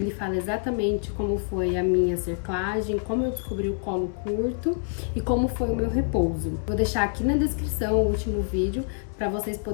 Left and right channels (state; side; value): silent; right; digital silence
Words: fala exatamente como foi a minha cerclagem, como eu descobri o colo curto e como foi o meu repouso. Vou deixar aqui na descrição o último vídeo para vocês